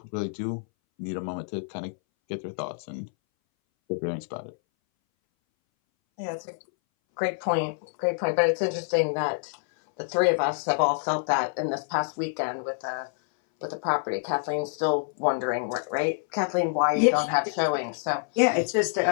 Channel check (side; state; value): right; silent; 60 dB below the other